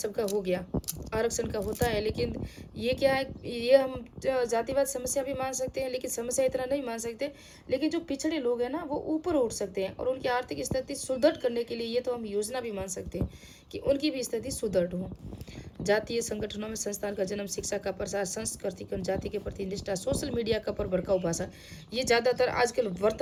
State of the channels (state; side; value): identical; both; correlation 1.00